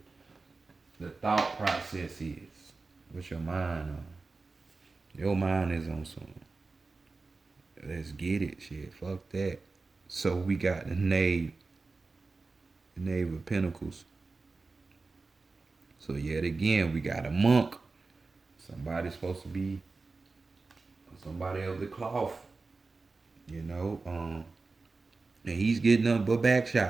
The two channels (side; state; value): left; quieter; 3.9 dB